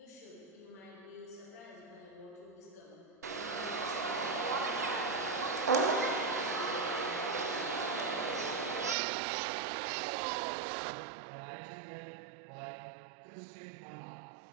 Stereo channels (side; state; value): left; drops out; at 9.0 s